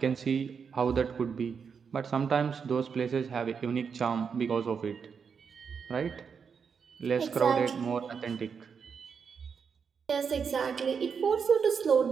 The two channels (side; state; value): left; quieter; 6.3 dB